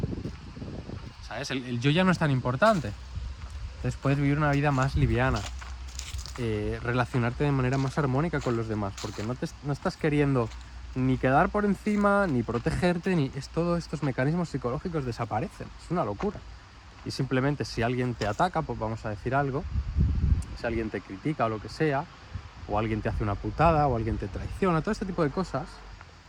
¿sabes? El yo ya no es tan importante. Entonces puedes vivir una vida más liviana, relacionarte de manera más armónica con los demás, porque no estás queriendo ni quedar por encima, ni protegerte, todos estos mecanismos psicológicos desaparecen. Es una locura. Y simplemente si alguien te ataca, pues vamos a decir algo, si alguien te critica o lo que sea, o alguien te hace una putada, o alguien te traiciona, todo este tipo de cosas,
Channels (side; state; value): both; identical; correlation 1.00